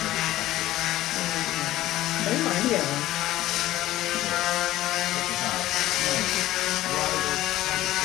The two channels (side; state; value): right; quieter; 15.2 dB